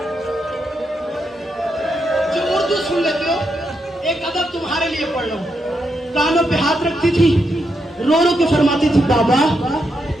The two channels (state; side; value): normal; both; correlation 0.82